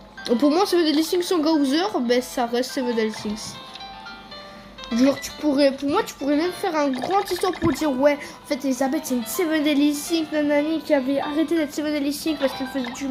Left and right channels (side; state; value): both; identical; correlation 1.00